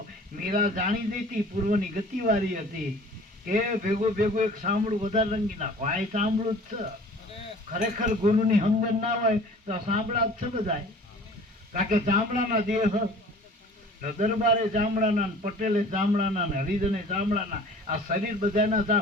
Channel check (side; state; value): both; normal; correlation 0.47